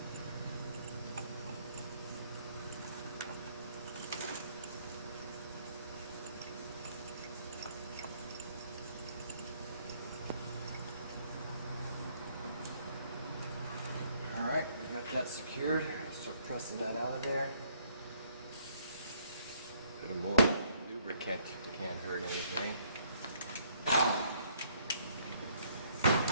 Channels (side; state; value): both; inverted; correlation -0.66